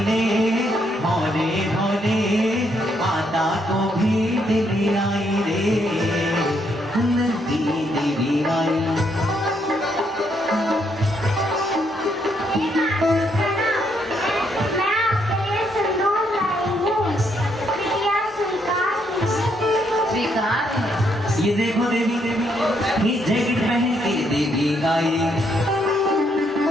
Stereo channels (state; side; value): normal; both; correlation 0.74